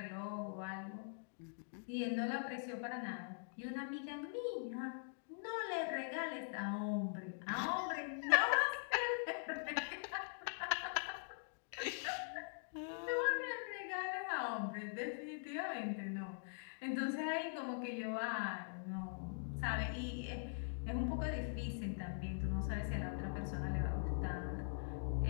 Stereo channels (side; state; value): right; silent; digital silence